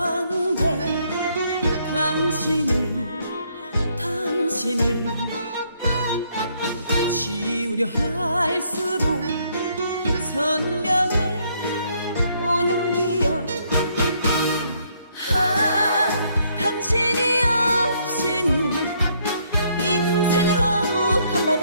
당신을 지우려 할수록 선명해 오는 기억. 당신이 없이는 인생을 허무한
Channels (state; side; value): inverted; both; correlation -0.70